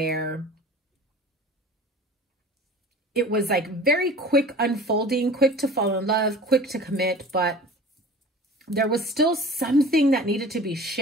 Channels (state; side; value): normal; both; correlation 0.41